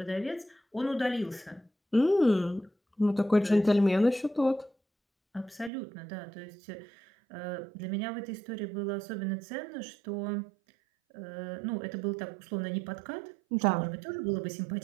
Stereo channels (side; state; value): left; drops out; at 5.7 s